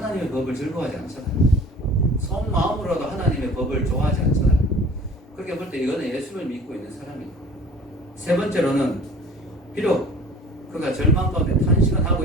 법을 즐거워하지 않잖아요. 속마음으로도 하나님의 법을 좋아하지 않잖아요. 그렇게 볼 때 이거는 예수를 믿고 있는 사람이에요. 세 번째로는 비록 그가 절망 가운데 탄식은 하고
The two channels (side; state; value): both; normal; correlation 0.47